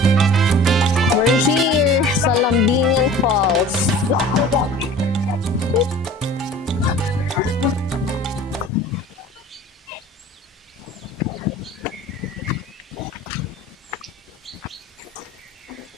We're here sa Lambingan Falls.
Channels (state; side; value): normal; both; correlation 0.43